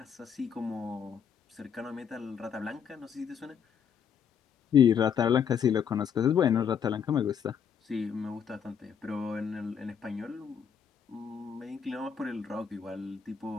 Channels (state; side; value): quieter; right; 7.7 dB